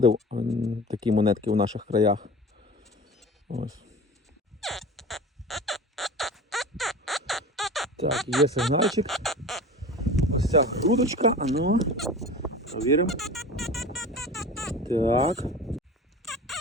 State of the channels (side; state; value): both; normal; correlation 0.36